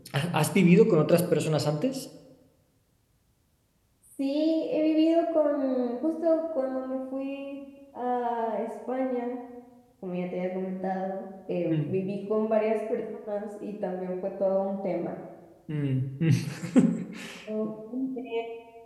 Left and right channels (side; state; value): both; identical; correlation 1.00